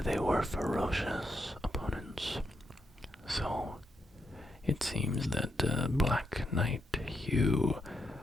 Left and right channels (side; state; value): both; normal; correlation 0.81